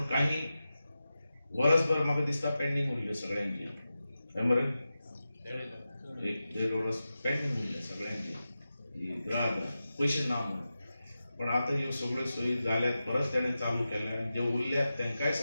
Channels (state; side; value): inverted; both; correlation -0.93